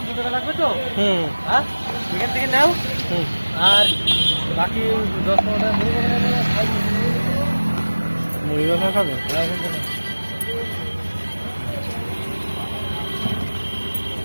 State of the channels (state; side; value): inverted; both; correlation -1.00